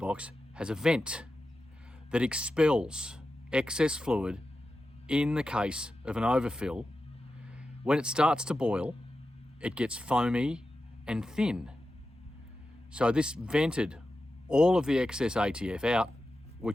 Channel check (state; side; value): normal; both; correlation 0.92